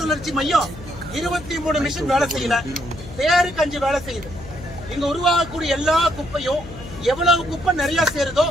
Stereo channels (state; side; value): noise; left; hum, 15 dB below the sound